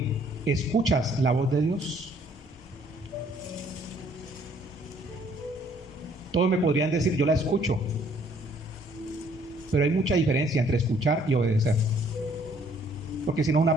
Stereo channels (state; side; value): normal; both; correlation 0.62